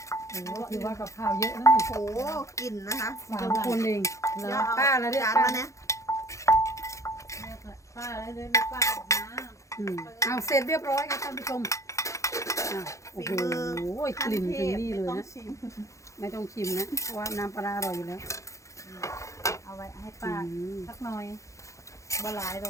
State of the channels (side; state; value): right; late; 0.15 ms